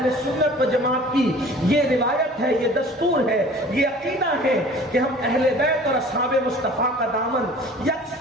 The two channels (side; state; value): both; normal; correlation 0.46